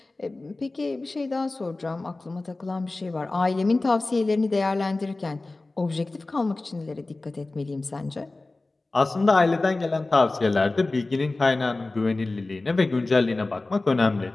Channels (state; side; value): quieter; right; 3.2 dB